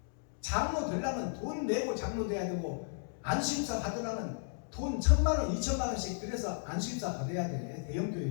장로 되려면 돈 내고 장로 돼야 되고, 안수입사 받으려면 돈 1,000만원 2,000만원씩 들여서 안수입사 받아야 돼. 대형교회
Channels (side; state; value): right; silent; digital silence